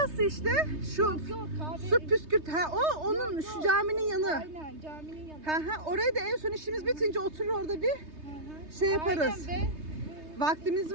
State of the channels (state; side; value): late; left; 3.3 ms